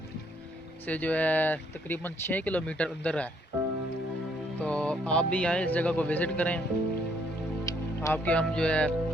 से जो है तकरीबन 6 किलोमीटर अंदर है। तो आप भी आएँ, इस जगह को विज़िट करें। आपके हम जो है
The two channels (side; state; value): both; normal; correlation 0.68